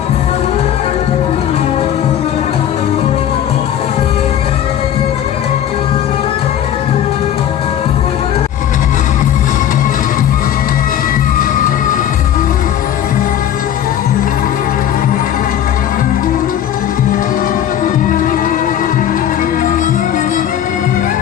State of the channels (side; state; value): right; quieter; 10.4 dB